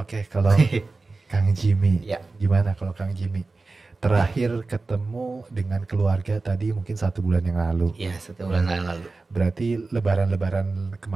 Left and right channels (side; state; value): left; quieter; 3.7 dB